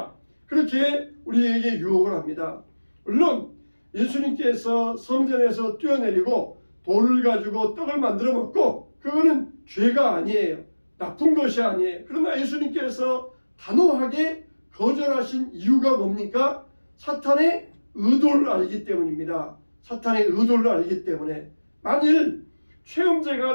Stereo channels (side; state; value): both; inverted; correlation -1.00